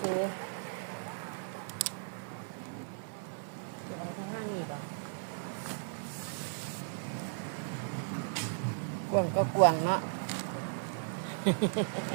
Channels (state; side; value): silent; left; 54 dB below the other